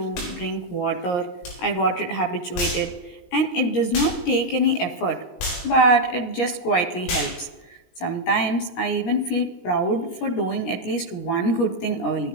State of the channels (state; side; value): late; right; 17 ms